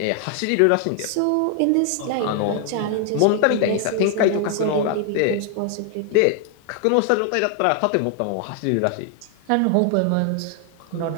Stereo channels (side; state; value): both; different; correlation 0.00